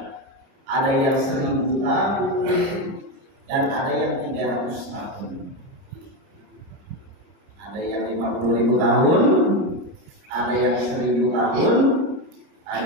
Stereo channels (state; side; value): late; left; 30 ms